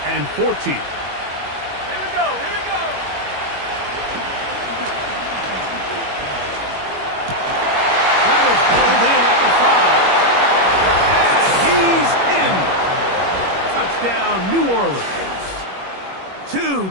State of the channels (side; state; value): left; late; 21 ms